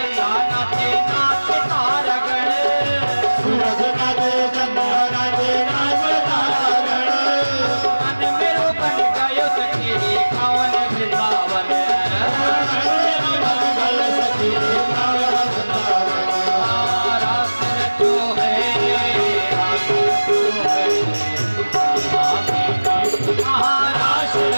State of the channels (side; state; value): both; inverted; correlation -1.00